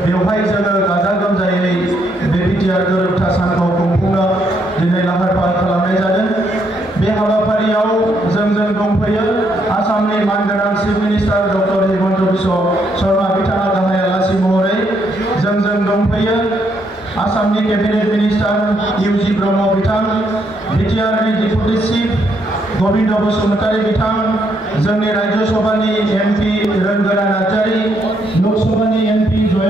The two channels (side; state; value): both; normal; correlation 0.74